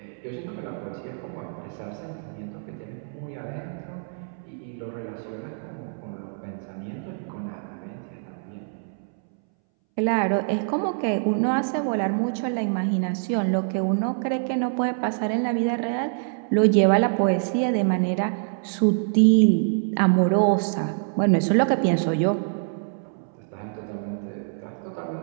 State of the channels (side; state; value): left; silent; 61 dB below the other